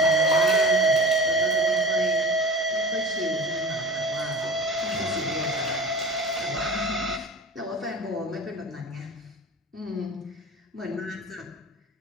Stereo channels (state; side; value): normal; both; correlation 0.36